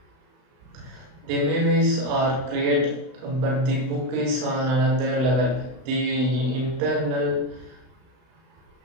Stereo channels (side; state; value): left; late; 31 ms